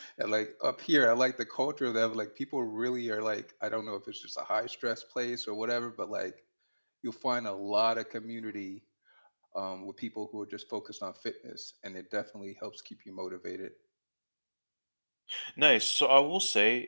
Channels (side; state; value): both; inverted; correlation -1.00